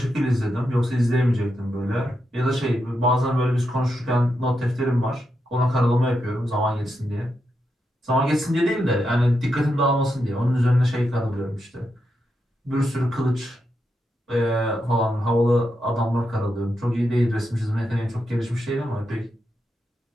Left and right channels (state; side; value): normal; both; correlation 0.84